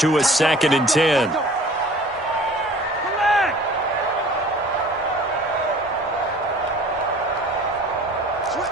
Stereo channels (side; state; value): both; normal; correlation 0.47